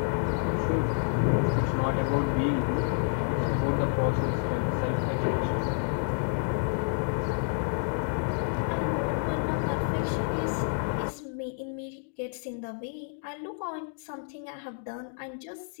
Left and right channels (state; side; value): silent; right; digital silence